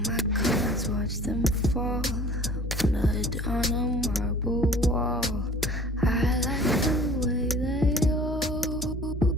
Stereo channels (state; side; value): normal; both; correlation 0.48